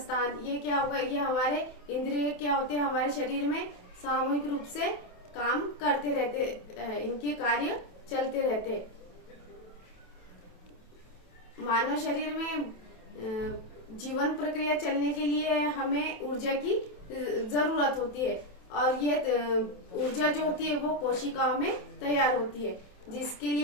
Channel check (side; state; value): right; late; 27 ms